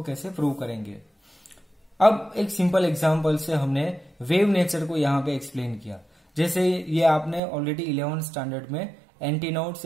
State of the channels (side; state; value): left; drops out; at 7.4 s